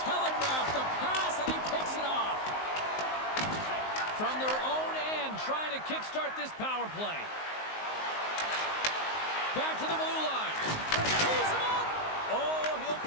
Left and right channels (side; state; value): right; late; 19 ms